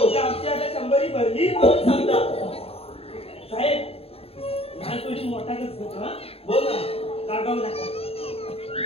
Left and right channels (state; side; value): late; right; 0.28 ms